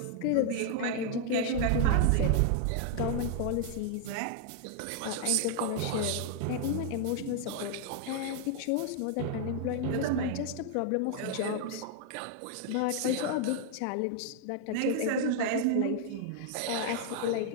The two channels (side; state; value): both; different; correlation 0.00